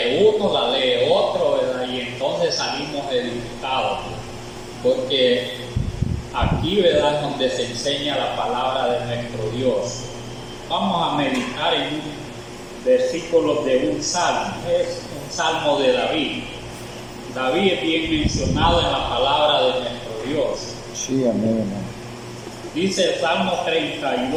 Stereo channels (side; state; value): both; identical; correlation 1.00